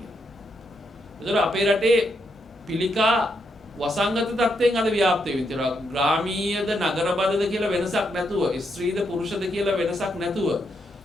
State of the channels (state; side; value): normal; both; correlation 0.80